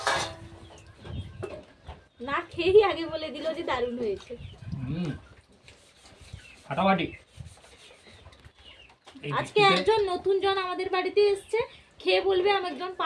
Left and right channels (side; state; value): both; identical; correlation 1.00